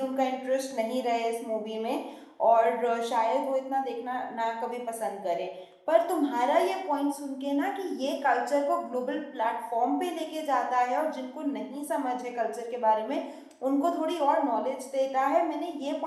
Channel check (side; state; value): both; identical; correlation 1.00